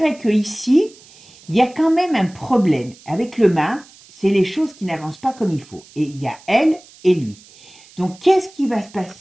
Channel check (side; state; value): right; noise; hiss, 24 dB below the sound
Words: qu'ici, il y a quand même un problème. Avec le mât, c'est les choses qui n'avancent pas comme il faut. Et il y a elle et lui. Donc, qu'est-ce qui va se